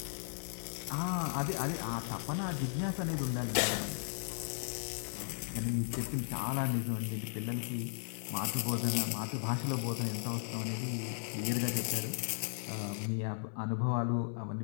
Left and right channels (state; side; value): silent; right; 54 dB below the other